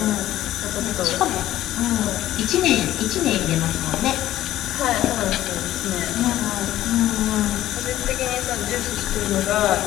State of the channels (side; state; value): right; quieter; 13.8 dB